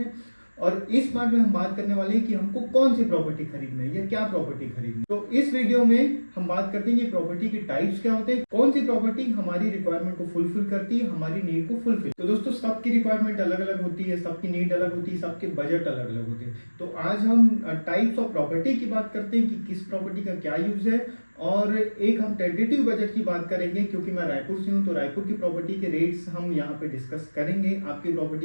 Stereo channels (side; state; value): both; inverted; correlation -1.00